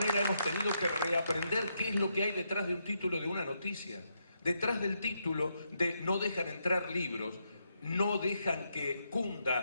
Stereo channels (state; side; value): inverted; both; correlation -0.80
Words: hemos tenido que reaprender qué es lo que hay detrás de un título de una noticia. Detrás del título de no dejan entrar libros, no dejan que